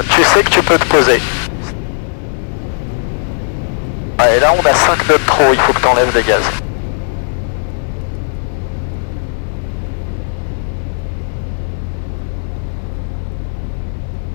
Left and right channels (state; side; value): silent; right; digital silence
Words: tu sais que tu peux te poser. Ouais, et là on a 5 nœuds de trop, il faut que tu enlèves des gaz.